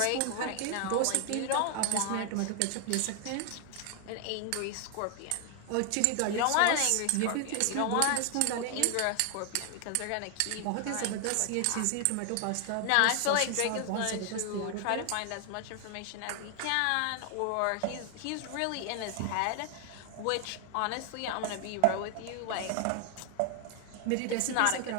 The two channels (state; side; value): different; both; correlation 0.00